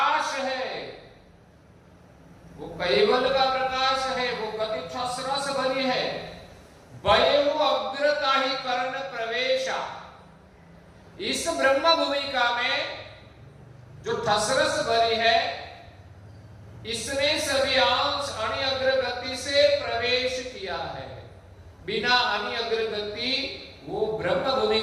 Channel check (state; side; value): identical; both; correlation 1.00